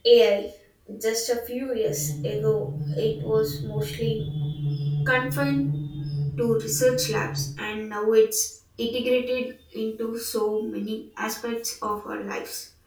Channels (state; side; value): identical; both; correlation 1.00